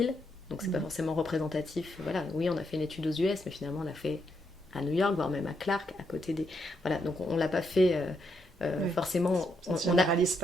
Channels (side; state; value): both; normal; correlation 0.78